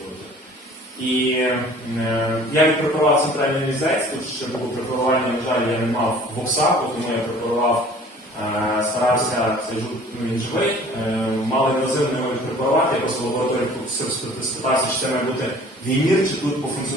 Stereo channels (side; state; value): both; normal; correlation 0.49